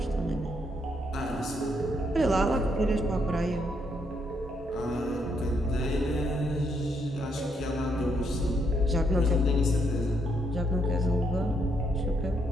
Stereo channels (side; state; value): both; normal; correlation 0.75